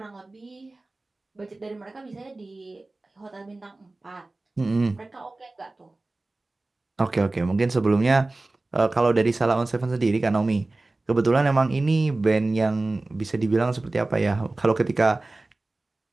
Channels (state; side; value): quieter; left; 3.1 dB